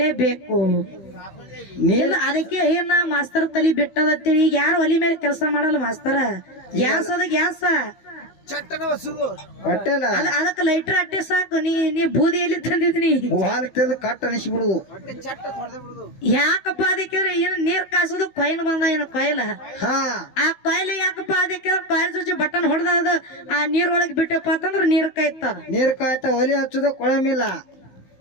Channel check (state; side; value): late; right; 15 ms